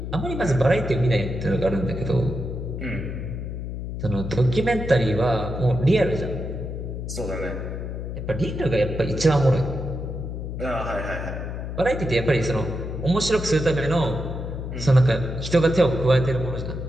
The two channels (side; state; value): left; noise; hum, 6 dB below the sound